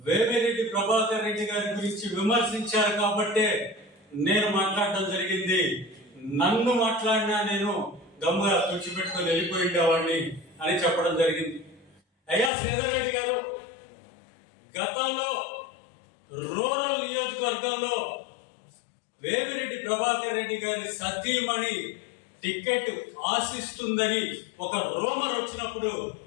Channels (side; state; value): right; drops out; at 12.5 s